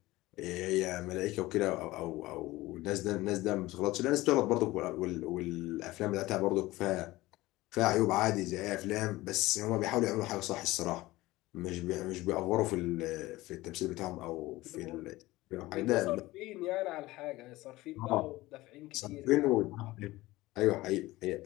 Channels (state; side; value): quieter; right; 18.7 dB